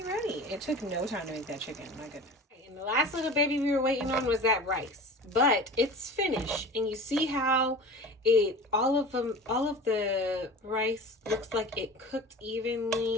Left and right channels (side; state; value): both; normal; correlation 0.37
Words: ready. It took no time to make that chicken. My goodness. And the last little baby we were waiting on was that rice. But it's finished. And you see how all of the rice looks like it cooked